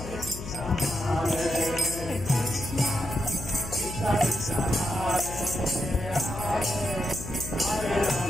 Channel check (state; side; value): noise; left; hum, 10 dB below the sound